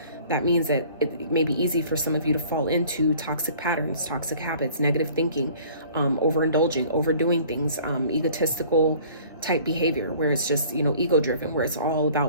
that means that it may be easy for some of you to fall into toxic patterns, toxic habits, negative thinking, overindulging, overdoing things, egotistical type behavior, where it's just, you know, ego driven, where it's all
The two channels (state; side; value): inverted; both; correlation -0.51